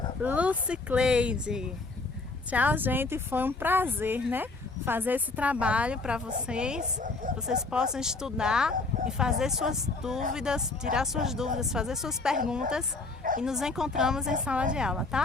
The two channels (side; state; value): right; quieter; 3.6 dB